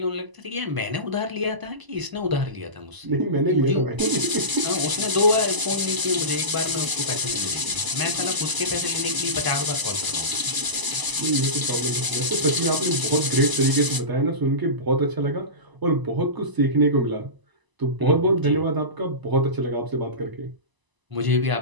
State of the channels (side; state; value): left; late; 1.0 ms